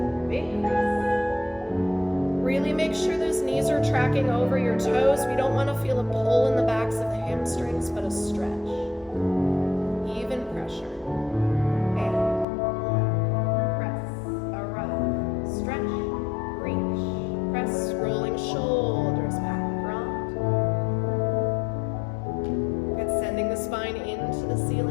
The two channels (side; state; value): right; drops out; at 12.5 s